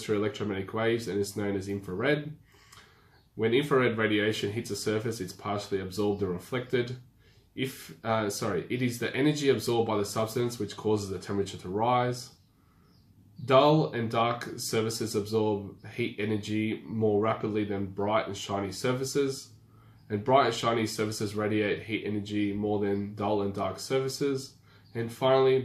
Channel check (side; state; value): both; identical; correlation 1.00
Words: through electromagnetic waves and is known as infrared. When infrared radiation hits a surface, it's partially absorbed or reflected. It is the energy absorbed by the substance which causes the temperature to rise. Dull and dark surfaces absorb heat energy more rapidly than bright and shiny surfaces. And bright and shiny surfaces radiate heat energy more than dull and dark surfaces. And finally,